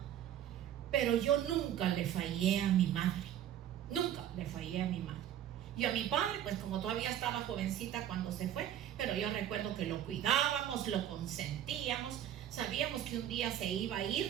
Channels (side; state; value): left; quieter; 10.8 dB